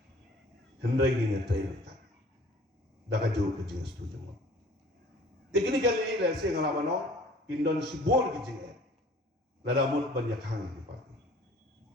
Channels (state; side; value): normal; both; correlation 0.50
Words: hendai ini terlihat dah jauh kecil setuju mo teknik kali ini saya ngalaman no pindon sibol kecil lada mut banyak hang di parti